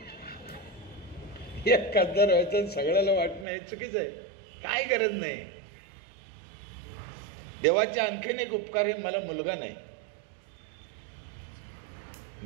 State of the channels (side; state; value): left; drops out; at 3.5 s